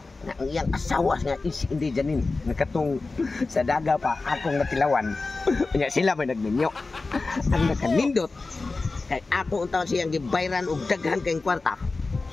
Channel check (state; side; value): quieter; right; 3.7 dB